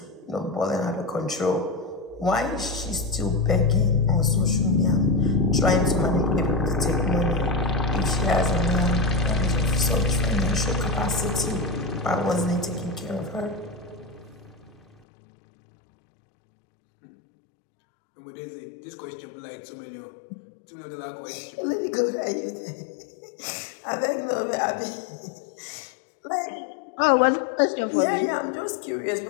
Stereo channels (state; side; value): drops out; right; at 14.9 s